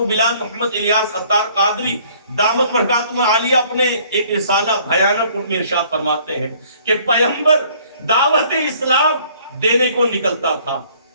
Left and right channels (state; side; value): inverted; both; correlation -0.58